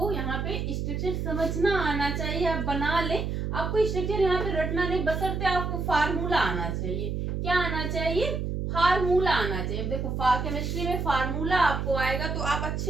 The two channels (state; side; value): noise; right; hum, 2 dB below the sound